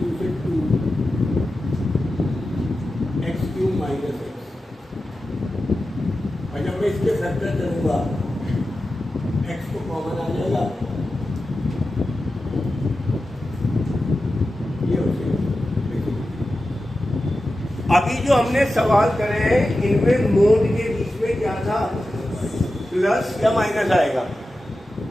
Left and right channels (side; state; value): both; normal; correlation 0.93